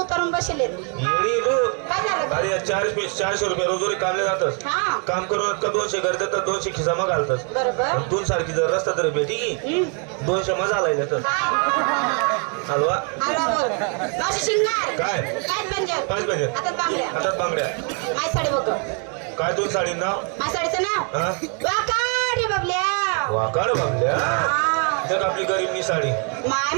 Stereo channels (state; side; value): quieter; left; 39.0 dB